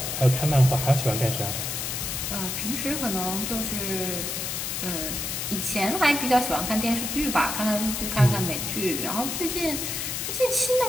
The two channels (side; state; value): left; noise; hiss, 3 dB below the sound